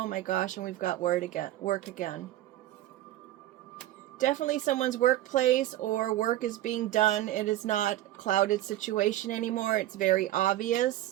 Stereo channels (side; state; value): left; quieter; 14.5 dB